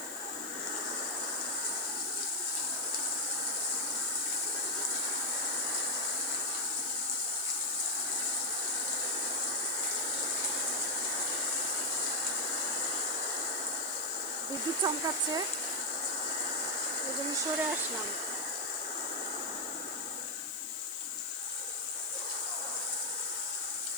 বিদ্যুৎ চমকাচ্ছে, এই জন্য সরে আসলাম।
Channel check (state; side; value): noise; left; hiss, 11 dB below the sound